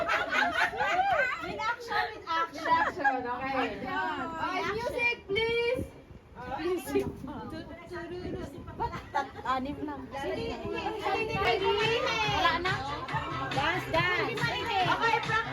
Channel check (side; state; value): both; identical; correlation 1.00